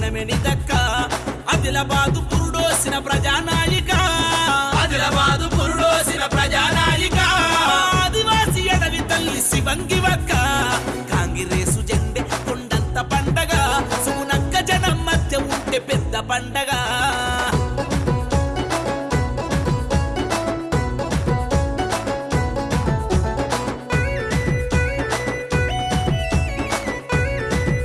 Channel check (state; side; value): identical; both; correlation 1.00